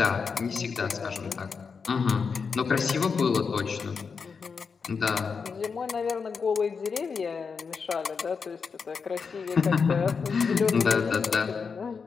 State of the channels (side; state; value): right; quieter; 5.5 dB